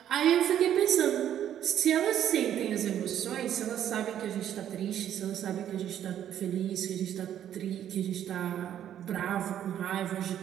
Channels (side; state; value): left; quieter; 10.5 dB